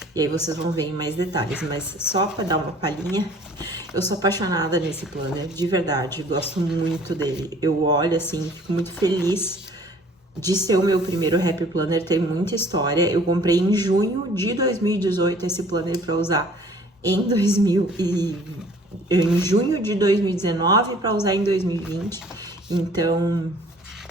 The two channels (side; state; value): both; normal; correlation 0.53